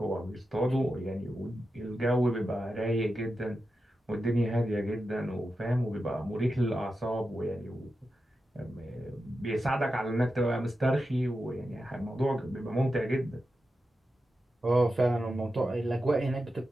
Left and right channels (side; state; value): both; normal; correlation 0.90